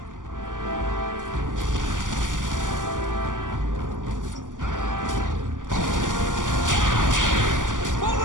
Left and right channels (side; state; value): left; late; 0.88 ms